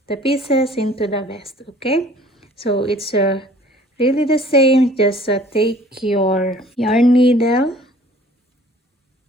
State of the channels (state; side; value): normal; both; correlation 0.52